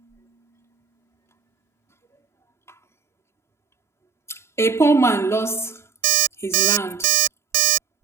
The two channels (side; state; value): left; quieter; 6.0 dB